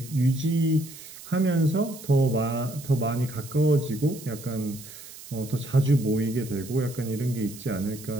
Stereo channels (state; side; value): noise; right; hiss, 16 dB below the sound